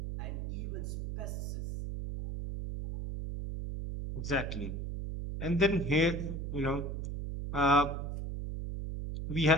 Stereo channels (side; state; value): right; noise; hum, 4 dB below the sound